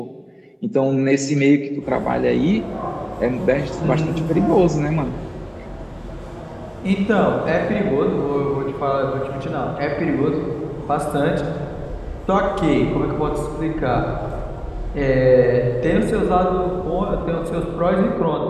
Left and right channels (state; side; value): identical; both; correlation 1.00